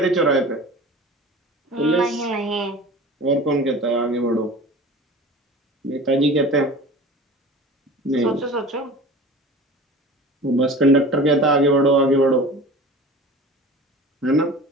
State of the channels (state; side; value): normal; both; correlation 0.38